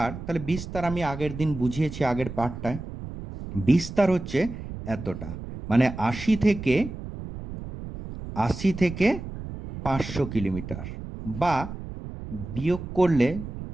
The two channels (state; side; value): noise; right; rumble, 10 dB below the sound